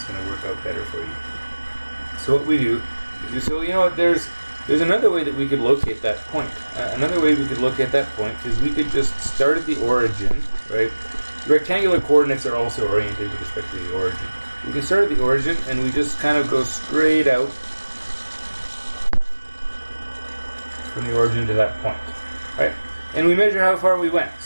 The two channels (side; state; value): both; inverted; correlation -1.00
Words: going to work out better for you. So what we do is, so you know what, there's another way that we could locate that point. Another way we could locate that point is we could just start at the origin, right? Rectangular coordinates are also oriented with respect to the origin. We can start at the origin and we just kind of go straight out from the origin to that point, right? And we measure how far we went.